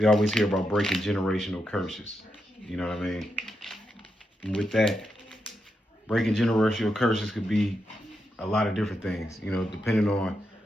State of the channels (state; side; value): normal; both; correlation 0.85